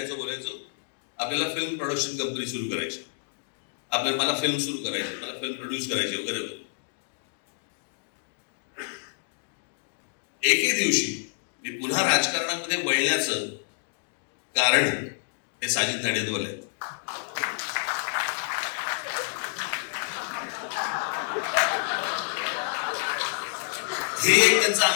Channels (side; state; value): right; silent; digital silence